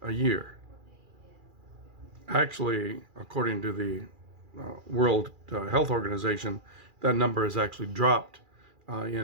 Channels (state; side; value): late; left; 2.4 ms